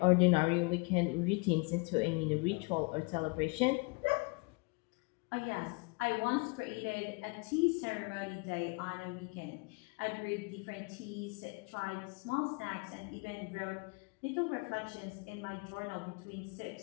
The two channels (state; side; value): quieter; right; 29.9 dB